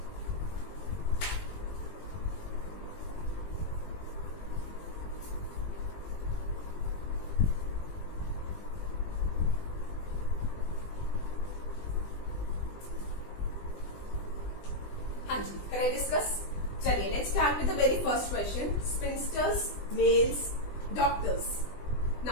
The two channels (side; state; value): right; late; 20 ms